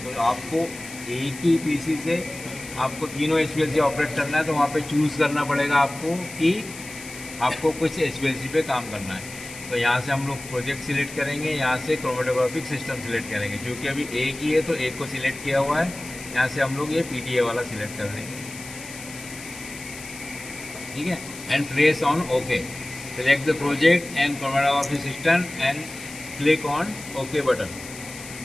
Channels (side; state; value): left; noise; hiss, 14 dB below the sound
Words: तो आपको एक ही पीसी से आपको तीनों HPLC ऑपरेट करना है, तो वहाँ पे चूज़ करना पड़ेगा आपको कि आपको कुछ HPLC पे काम करना है। तो यहाँ से हम लोग प्रोजेक्ट सिलेक्ट करेंगे, यहाँ से क्रोमेटोग्राफिक सिस्टम सिलेक्ट करेंगे। क्योंकि अभी एक ही है तो एक को सिलेक्ट किया हुआ है, यहाँ से हम लोग ये पीडीए वाला सिलेक्ट कर देंगे, ठीक है। And press on okay. Select the project and chromatographic system and click on okay button.